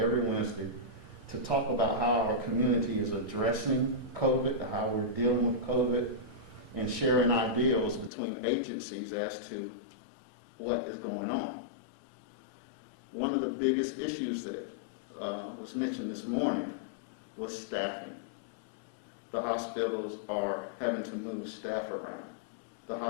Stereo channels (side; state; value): right; drops out; at 8.1 s